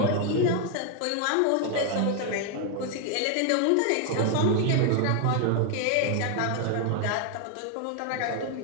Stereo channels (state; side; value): different; both; correlation 0.00